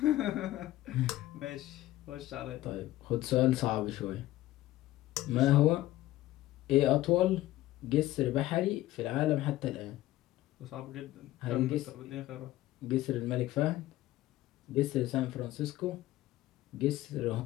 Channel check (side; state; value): right; quieter; 15.7 dB